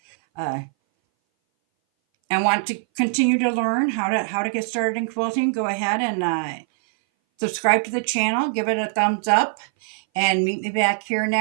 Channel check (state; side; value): silent; left; 60 dB below the other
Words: and want to continue to learn how to get started in quilting, go ahead and subscribe to the channel, give it a thumbs up, and meet me back here